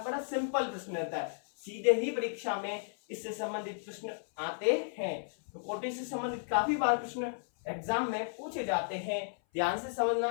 बड़ा सिंपल प्रश्न रहता है, सीधे ही परीक्षा में इससे संबंधित प्रश्न आते हैं। तो कोटि से संबंधित काफी बार प्रश्न एग्जाम में पूछे जाते हैं। ध्यान से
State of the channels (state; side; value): silent; right; 55 dB below the other